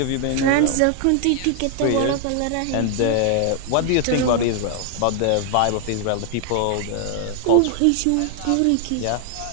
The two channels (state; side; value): different; both; correlation 0.00